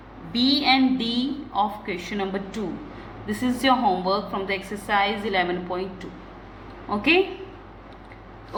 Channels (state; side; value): identical; both; correlation 1.00